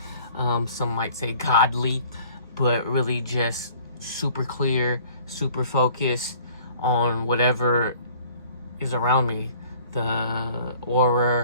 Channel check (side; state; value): both; inverted; correlation -0.53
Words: Some might say godly, but really just super clear, super focused on whatever is around me, the